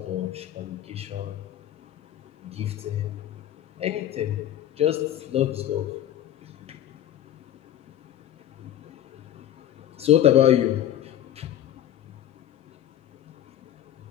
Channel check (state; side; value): quieter; right; 11.7 dB